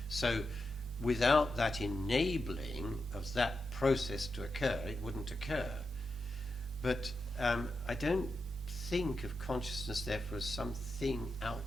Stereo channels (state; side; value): normal; both; correlation 0.88